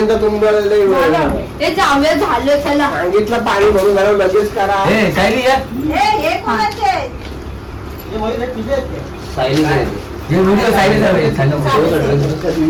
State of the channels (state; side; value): identical; both; correlation 1.00